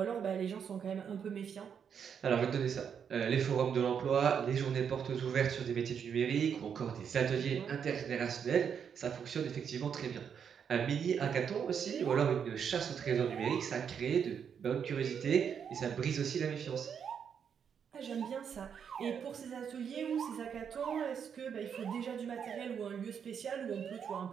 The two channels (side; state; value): left; quieter; 7.5 dB